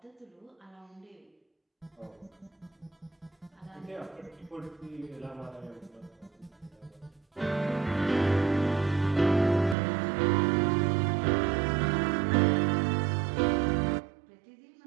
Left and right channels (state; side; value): drops out; left; at 9.8 s